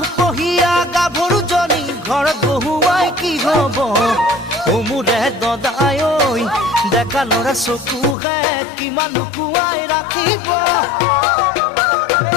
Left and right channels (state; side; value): drops out; right; at 8.2 s